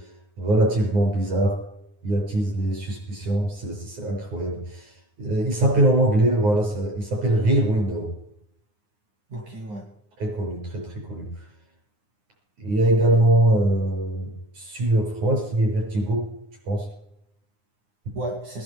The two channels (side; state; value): left; late; 9.7 ms